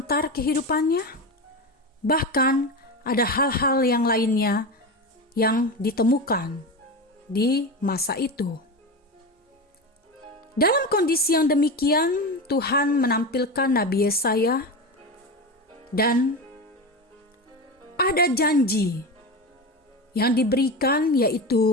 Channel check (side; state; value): both; normal; correlation 0.22